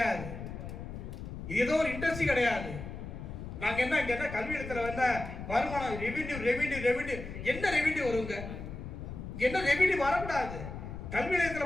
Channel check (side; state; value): left; noise; rumble, 9 dB below the sound